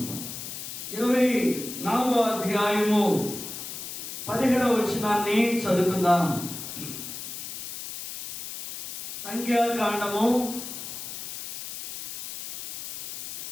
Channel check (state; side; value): noise; left; hiss, 8 dB below the sound